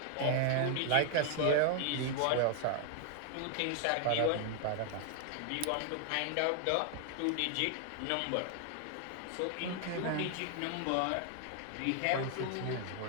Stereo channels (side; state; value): both; different; correlation 0.00